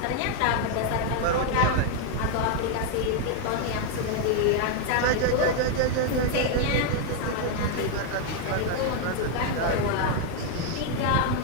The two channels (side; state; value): both; different; correlation 0.01